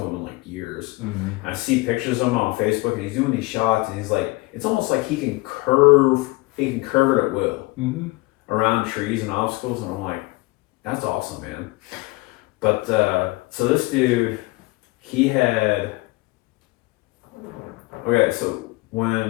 him in like years. I see pictures of him on Facebook, and he's doing these shots, and he's like, it's almost like he can curve it at will around trees and obstacles, and I'm like, that's awesome, man. But so this dude, he had Okay, so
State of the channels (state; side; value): quieter; right; 22.8 dB